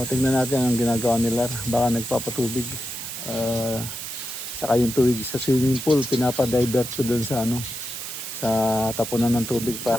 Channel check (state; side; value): noise; right; hiss, 8 dB below the sound